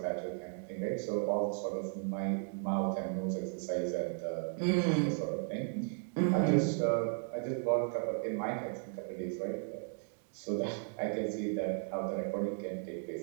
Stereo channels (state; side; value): silent; left; 54 dB below the other